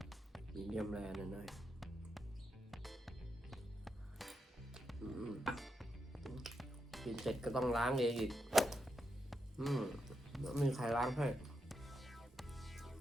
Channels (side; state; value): both; normal; correlation 0.84